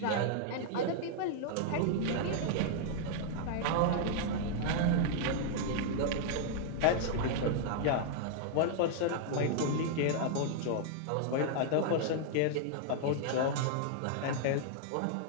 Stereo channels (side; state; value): both; different; correlation -0.01